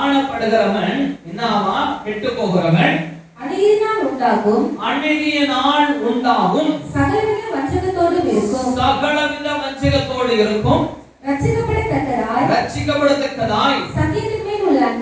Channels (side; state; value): both; identical; correlation 1.00